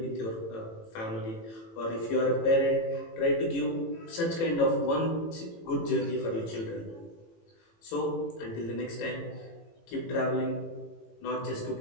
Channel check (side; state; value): right; late; 18 ms